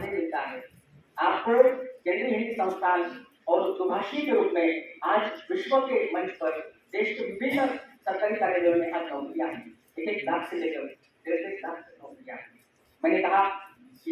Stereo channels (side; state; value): both; identical; correlation 1.00